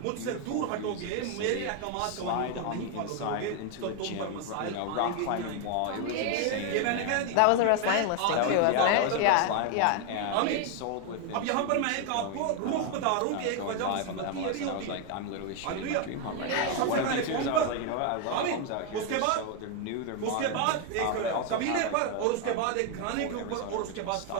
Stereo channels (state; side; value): different; both; correlation 0.01